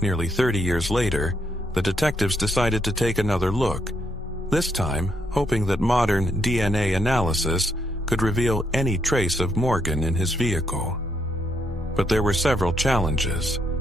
Nearly 30 years later, the detectives decided to take another look, this time hoping that modern DNA analysis could reveal any trace of Morgan in his vehicle. But there were several challenges.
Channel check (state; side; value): normal; both; correlation 0.76